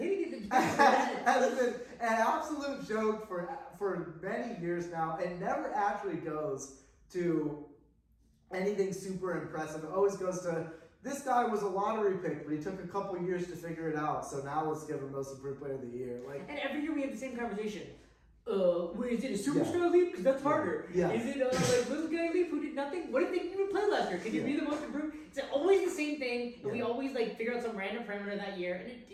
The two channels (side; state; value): both; identical; correlation 1.00